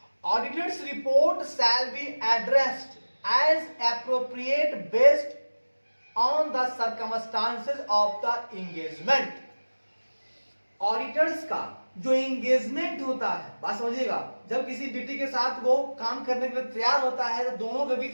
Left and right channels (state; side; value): inverted; both; correlation -1.00